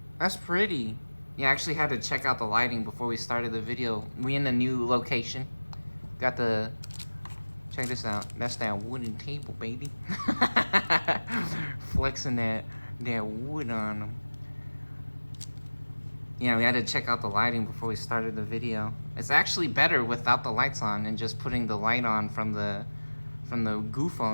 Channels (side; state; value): both; inverted; correlation -1.00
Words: That's pretty. Yeah, I actually had to check out the lighting before we started the video. We in the new location. Got the... Check this out. That's that wooden table, baby. Flexing that wood on them. Yeah, we had to check out the lighting before we started the video. It's actually better without the lights on and just putting the light on from the Goo